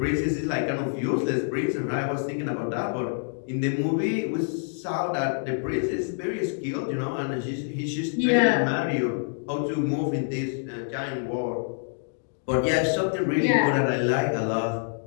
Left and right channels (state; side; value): silent; right; digital silence